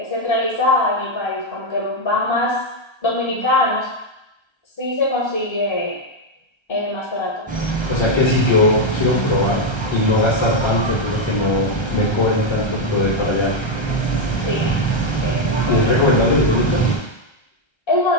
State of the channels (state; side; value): late; right; 1.3 ms